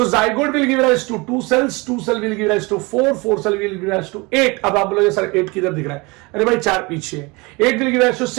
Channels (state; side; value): quieter; left; 25.9 dB